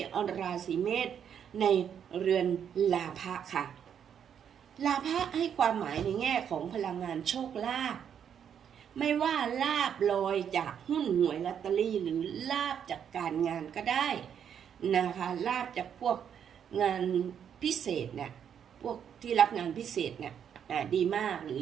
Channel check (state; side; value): quieter; left; 8.4 dB